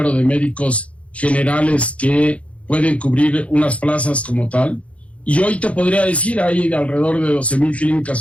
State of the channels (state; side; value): late; right; 0.064 ms